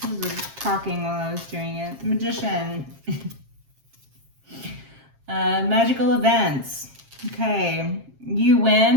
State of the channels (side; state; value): left; late; 7.5 ms